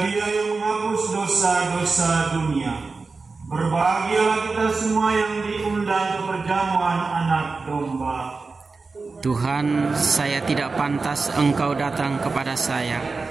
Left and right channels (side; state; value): left; quieter; 4.1 dB